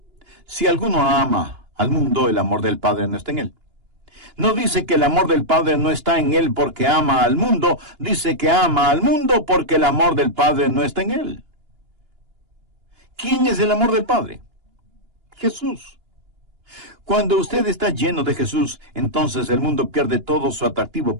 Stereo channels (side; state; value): left; late; 2.9 ms